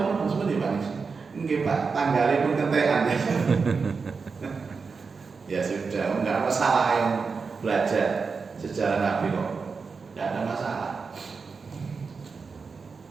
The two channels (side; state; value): left; quieter; 4.9 dB